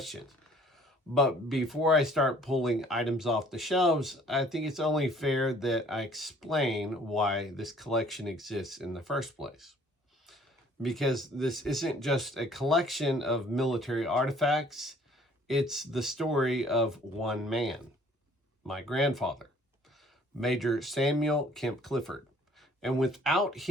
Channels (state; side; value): normal; both; correlation 0.56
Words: But before I start pulling items off the shelves, I think it's only fair that I explain why this collection exists in the first place. Because this isn't just a collection of military artifacts, it's the story of one man, my grandfather, Major Samuel Kemp Clifford. And without